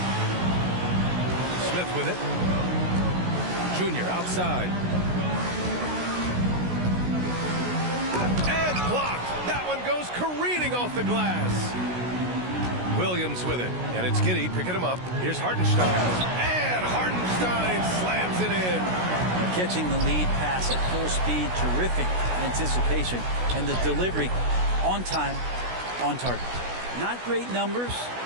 Smith with it. Junior outside. And blocked. That one goes careening off the glass. Williams with it. And it's Giddey picking him up. Here's Hartenstein. And Hartenstein slams it in. Catching the lead pass at full speed. Terrific anticipation. And the delivery on time, on target. Not great numbers,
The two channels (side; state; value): left; late; 16 ms